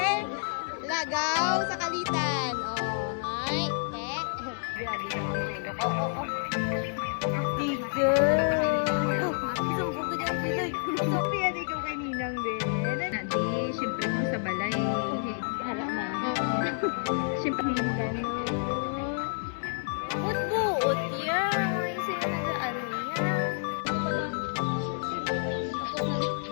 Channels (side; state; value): right; silent; 56 dB below the other